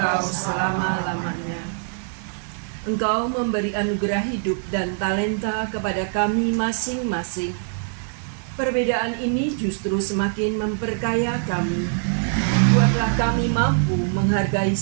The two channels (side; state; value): left; silent; 63 dB below the other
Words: selama-lamanya. Engkau memberi anugerah hidup dan talenta kepada kami masing-masing. Perbedaan ini justru semakin memperkaya kami. Buatlah kami mampu menghargai